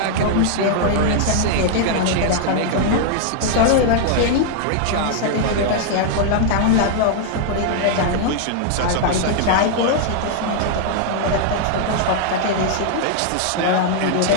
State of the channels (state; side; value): different; both; correlation 0.00